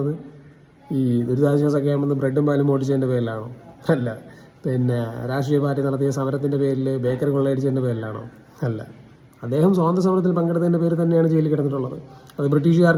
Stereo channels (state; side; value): identical; both; correlation 1.00